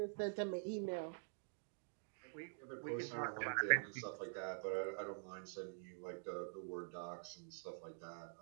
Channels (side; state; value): left; silent; digital silence